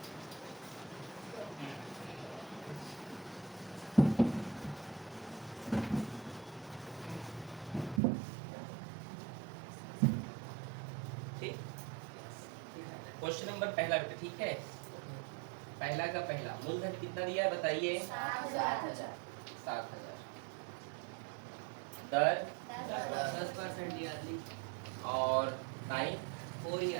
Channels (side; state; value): left; drops out; at 8.0 s